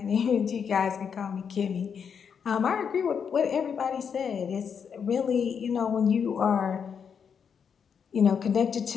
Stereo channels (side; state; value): right; quieter; 7.0 dB